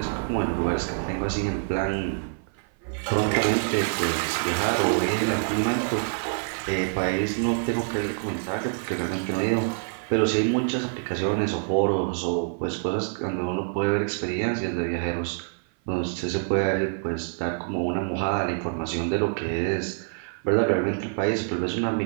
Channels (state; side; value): silent; left; 56 dB below the other